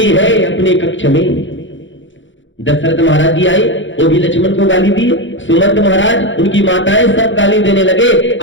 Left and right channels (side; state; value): right; late; 0.55 ms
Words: है अपने कक्ष में। दशरथ महाराज जी आए, वो भी लक्ष्मण को गाली दी। सुमंत महाराज, उनकी माताएं सब गाली देने लगे।